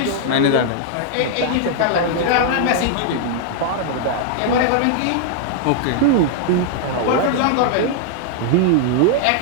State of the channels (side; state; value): both; different; correlation -0.01